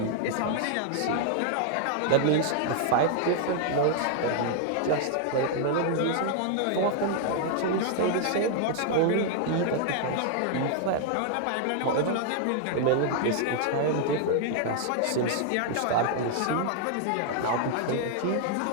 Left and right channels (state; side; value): different; both; correlation 0.00